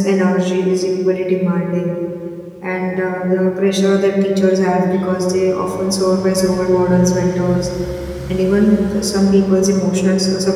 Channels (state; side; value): identical; both; correlation 1.00